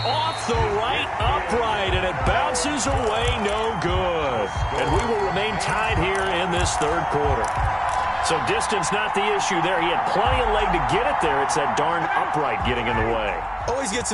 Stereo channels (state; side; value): identical; both; correlation 1.00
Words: the right upright, and it bounces away no good. And we will remain tied here in this third quarter. So distance not the issue there. He had plenty of leg to get it there. It's that darn upright getting in the way. Always gets